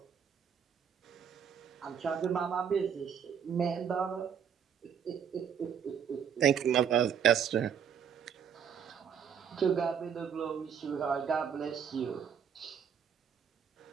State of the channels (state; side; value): quieter; left; 7.7 dB